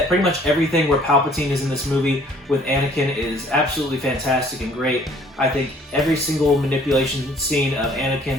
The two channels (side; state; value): both; normal; correlation 0.57